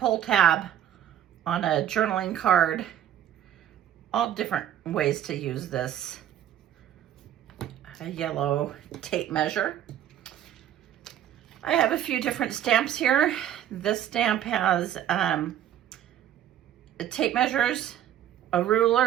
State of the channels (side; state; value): left; quieter; 10.8 dB